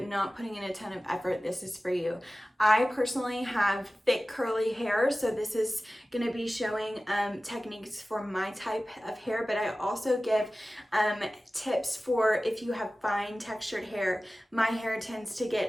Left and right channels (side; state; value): both; normal; correlation 0.96